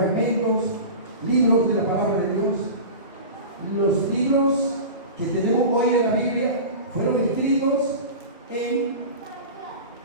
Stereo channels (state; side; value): inverted; both; correlation -0.32